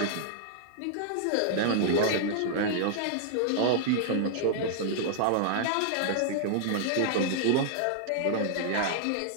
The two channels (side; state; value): both; different; correlation -0.01